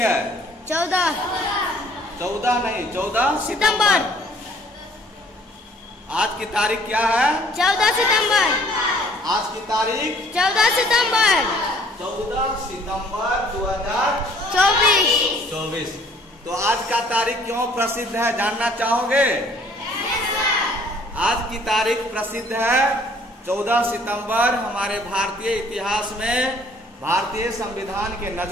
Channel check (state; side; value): normal; both; correlation 0.58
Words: 14 नहीं, 14 सितंबर। आज की तारीख क्या है? 14 सितंबर। आज की तारीख 14 सितंबर 14 सितंबर 2024। तो आज का तारीख क्यों प्रसिद्ध है, जानना चाहोगे? आज की तारीख प्रसिद्ध है 14 सितंबर। हमारे भारतीय इतिहास में, भारतीय संविधान के